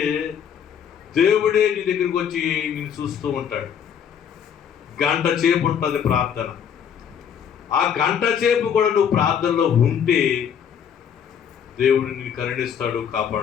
దేవుడే నీ దగ్గరికి వచ్చి నేను చూస్తూ ఉంటాడు. గంట సేపు ఉంటుంది ప్రార్థన. ఆ గంట సేపు కూడా నువ్వు ప్రార్థనలో ఉంటే దేవుడు నిన్ను కరుణిస్తాడు,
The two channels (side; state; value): right; quieter; 8.1 dB